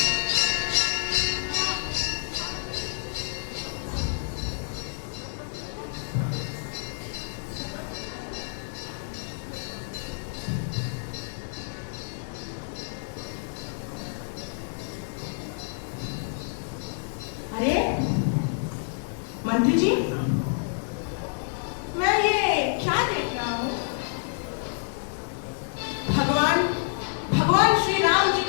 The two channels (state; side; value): silent; right; 59 dB below the other